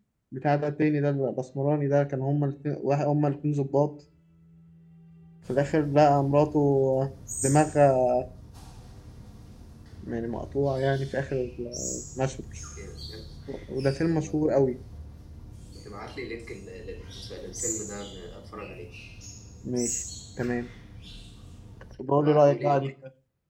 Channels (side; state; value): both; identical; correlation 1.00